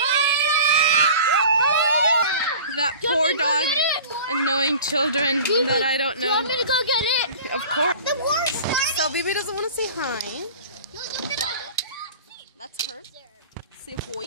now? That poor dog annoying children that I don't Do you want know. me to go get it? Of course. The war started. So Bibi doesn't want to say hi. That's her. Say hoi.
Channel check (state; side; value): inverted; both; correlation -0.41